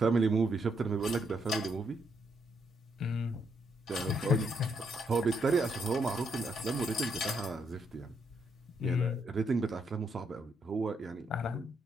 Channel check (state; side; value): normal; both; correlation 0.76